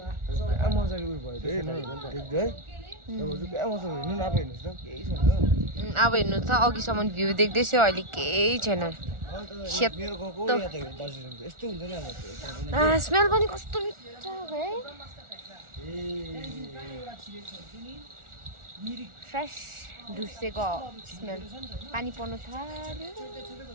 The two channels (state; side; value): late; left; 1.4 ms